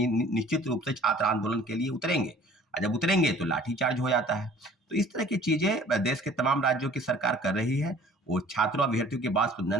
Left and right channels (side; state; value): both; normal; correlation 0.51